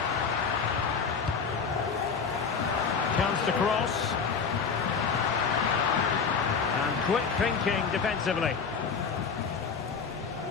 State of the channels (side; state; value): right; quieter; 5.7 dB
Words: Chance to cross. And quick thinking defensively.